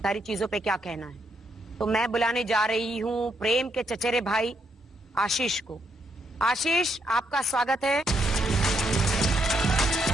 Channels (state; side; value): normal; both; correlation 0.76